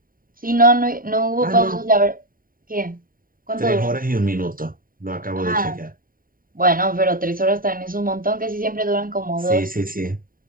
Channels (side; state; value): left; late; 0.41 ms